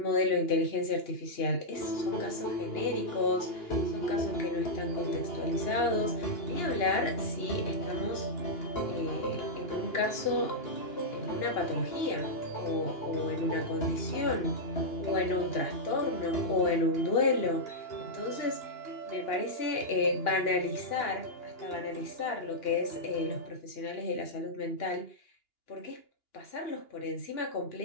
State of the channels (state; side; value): late; right; 2.9 ms